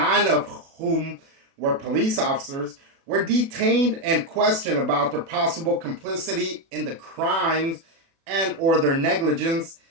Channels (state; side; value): late; left; 36 ms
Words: of whom were police officers, were detained and questioned about their possible complicity in the crimes and or their negligence